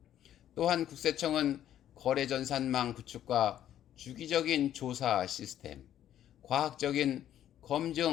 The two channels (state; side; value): quieter; right; 11.2 dB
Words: 또한 국세청은 거래전산망 구축과 주기적인 조사 시스템, 과학적인